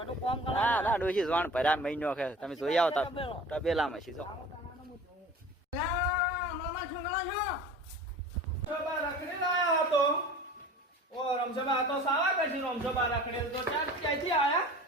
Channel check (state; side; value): normal; both; correlation 0.41